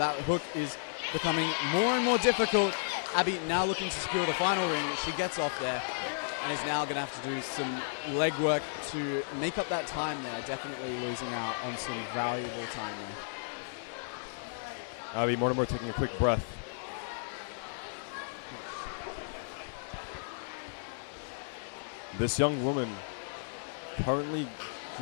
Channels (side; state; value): right; silent; digital silence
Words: Abby Mortimer taking a quick breath. This young woman currently